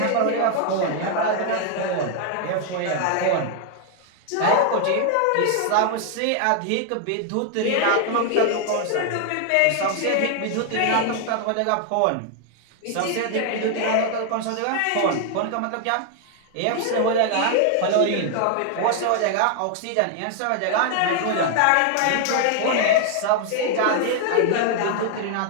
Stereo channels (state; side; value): different; both; correlation 0.00